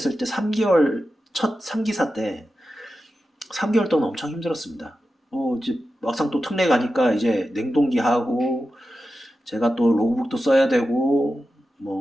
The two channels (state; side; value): normal; both; correlation 0.91